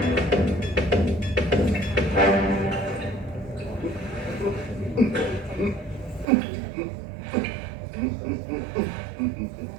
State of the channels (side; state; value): left; drops out; at 6.2 s